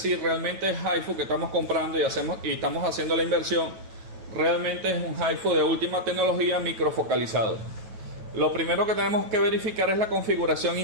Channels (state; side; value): late; left; 9.1 ms